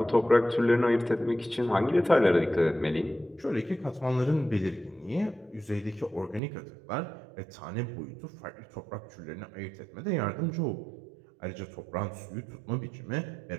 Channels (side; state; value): left; drops out; at 6.4 s